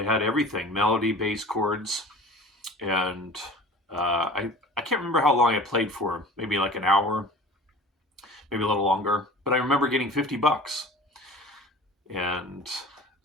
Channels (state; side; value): normal; both; correlation 0.41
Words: had everything melody, bass, chords. And I can't remember how long I played for, maybe like an hour, maybe a little longer. But I remember getting $50. And